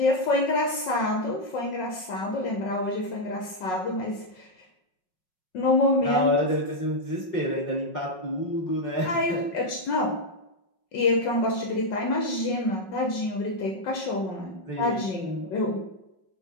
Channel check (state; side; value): late; right; 5.5 ms